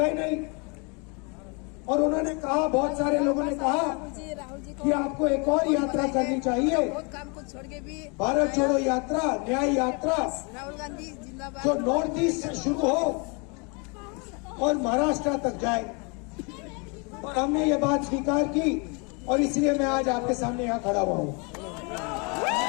नहीं। और उन्होंने कहा, बहुत सारे लोगों ने कहा कि आपको एक और यात्रा करनी चाहिए, भारत जोड़ो यात्रा, न्याय यात्रा, जो नॉर्थ ईस्ट से शुरू हो और महाराष्ट्र तक जाए। और हमने ये बात स्वीकार की और इसलिए मैं आज आपके सामने यहाँ खड़ा हुआ हूँ।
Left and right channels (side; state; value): right; quieter; 32.6 dB